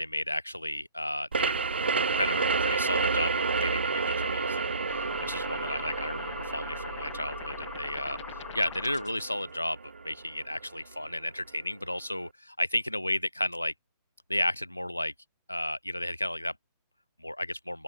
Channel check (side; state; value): both; inverted; correlation -0.63